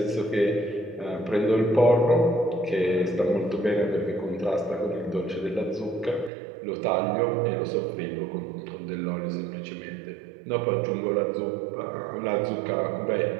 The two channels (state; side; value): drops out; left; at 6.3 s